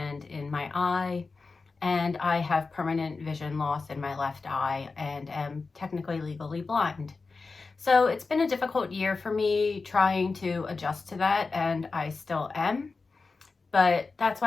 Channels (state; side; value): quieter; right; 4.2 dB